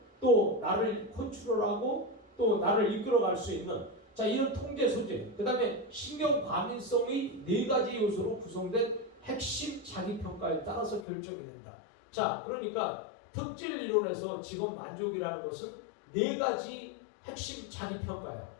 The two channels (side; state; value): right; drops out; at 11.1 s